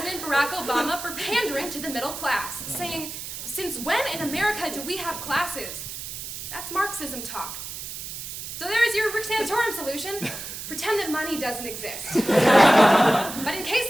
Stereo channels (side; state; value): right; noise; hiss, 8 dB below the sound